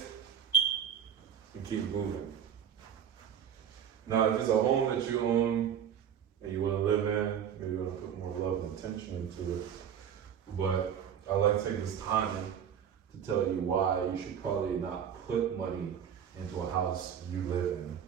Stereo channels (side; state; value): left; quieter; 8.7 dB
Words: and keep moving. Now, if it's a home that you own and you want to live in, maybe you want to put more love and attention into it. But I like to take this time to tell you why you should probably not put money into a house you live in,